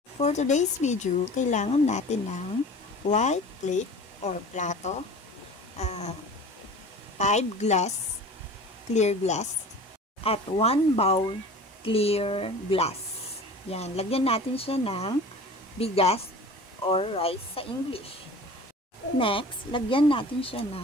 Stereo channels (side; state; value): both; normal; correlation 0.40